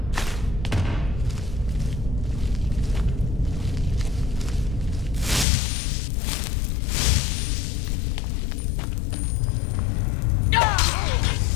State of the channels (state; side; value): drops out; right; at 5.5 s